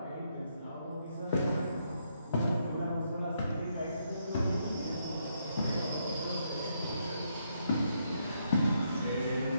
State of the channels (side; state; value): both; inverted; correlation -0.76